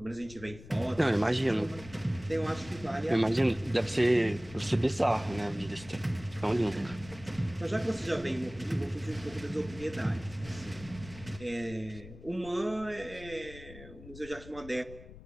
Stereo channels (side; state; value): left; noise; rumble, 17 dB below the sound